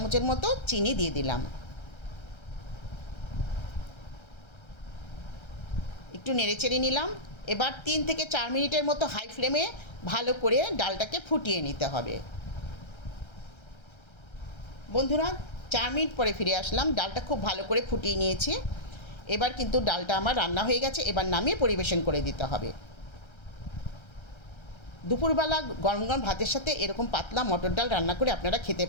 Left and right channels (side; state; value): right; late; 1.3 ms